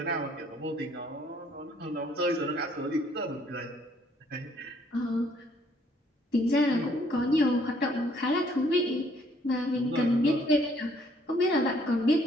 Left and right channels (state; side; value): normal; both; correlation 0.65